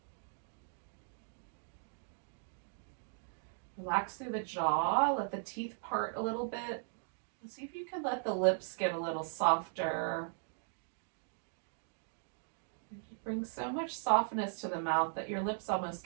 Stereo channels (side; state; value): left; silent; digital silence